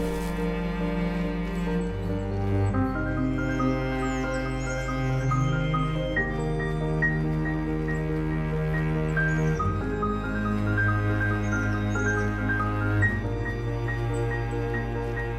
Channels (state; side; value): identical; both; correlation 1.00